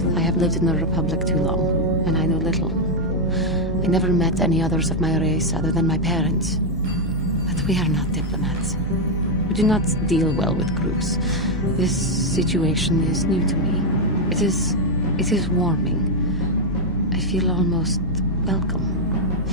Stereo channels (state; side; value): normal; both; correlation 0.00